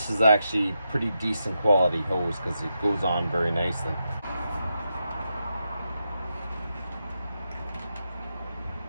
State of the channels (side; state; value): both; inverted; correlation -0.86